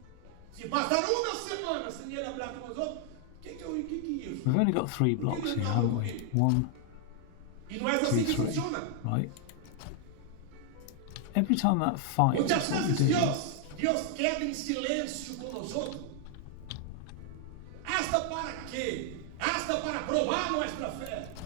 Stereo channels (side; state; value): both; different; correlation 0.00